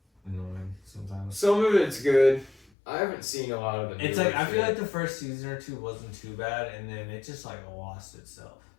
annoying sometimes. Some of it's good. I haven't seen a lot of it. It's like I feel like the first season or 2 wasn't too bad, and then it just like lost itself.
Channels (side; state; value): right; drops out; at 2.7 s